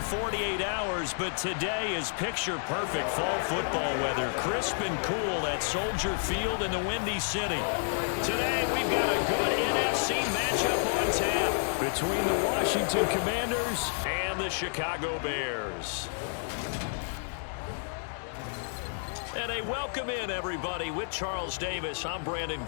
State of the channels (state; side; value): silent; right; digital silence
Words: 48 hours, but today is picture-perfect fall football weather. Crisp and cool at Soldier Field in the Windy City. Today, we've got a good NFC matchup on tap between the Washington Commanders and the Chicago Bears. And a welcome in, everybody, with Charles Davis. I'm Brandon